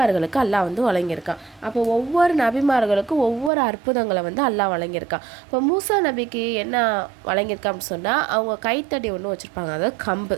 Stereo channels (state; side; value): drops out; left; at 3.5 s